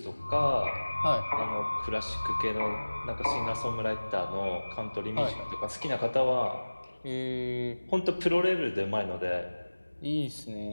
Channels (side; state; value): both; inverted; correlation -1.00